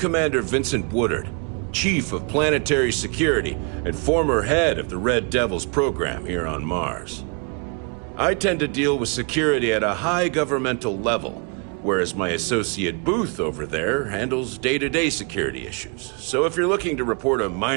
Vincent Woodard, Chief of Planetary Security and former head of the Red Devils program here on Mars. I tend to deal with security at a high governmental level, whereas my associate Booth over there handles day-to-day security issues. So if you're looking to report a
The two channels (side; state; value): left; quieter; 36.5 dB